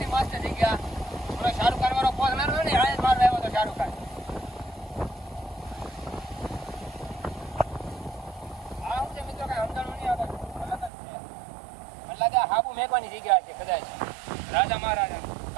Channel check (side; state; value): left; drops out; at 10.9 s